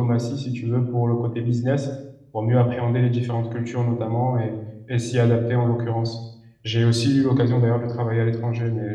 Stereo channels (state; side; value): identical; both; correlation 1.00